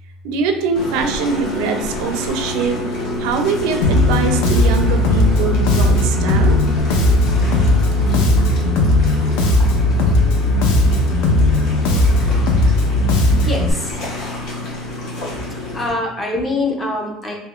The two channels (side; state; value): both; normal; correlation 0.42